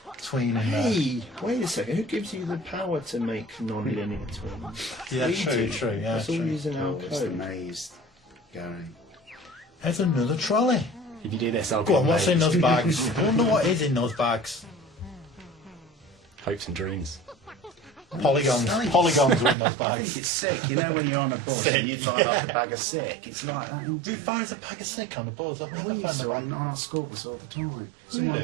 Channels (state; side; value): drops out; left; at 19.6 s